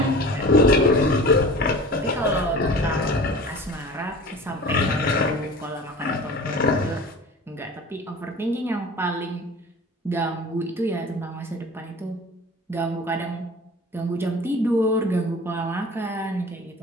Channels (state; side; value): normal; both; correlation 0.39